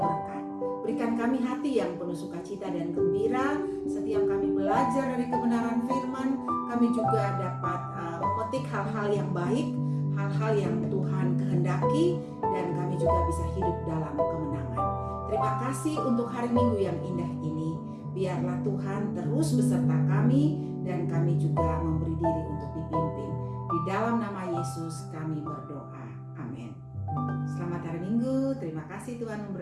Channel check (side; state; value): both; identical; correlation 1.00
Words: Berikan kami hati yang penuh sukacita dan gembira setiap kami belajar dari kebenaran firman. Kami juga dapat memetik hal-hal yang baik, hal-hal yang Tuhan kehendaki, dan kami juga bisa hidup dalam kemenangan. Terima kasih untuk hari Minggu yang indah ini. Biarlah Tuhan terus beserta kami, dan kami juga memberi diri untuk dipimpin. Di dalam nama Yesus kami berdoa. Amin. Selamat hari Minggu. Terima kasih, Tuhan